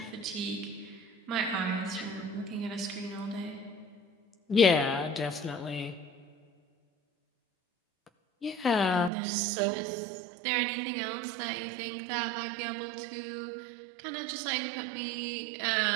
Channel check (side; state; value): left; drops out; at 9.1 s